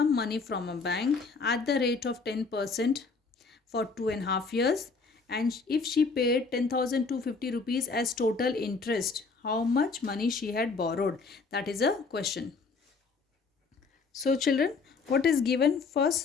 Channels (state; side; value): quieter; right; 4.4 dB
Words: money from a bank at the rate of 10% for 2.5 years, and if she paid 10,250 rupees as total interest, how much money she had borrowed? That is a question. So children, what is given